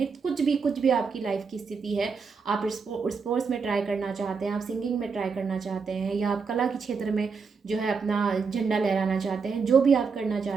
कुछ भी आपकी लाइफ की स्थिति है, आप स्पोर्ट्स में ट्राई करना चाहते हैं, आप सिंगिंग में ट्राई करना चाहते हैं, या आप कला के क्षेत्र में जो है अपना झंडा लहराना चाहते हैं, जो भी आप करना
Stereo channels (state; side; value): quieter; left; 5.2 dB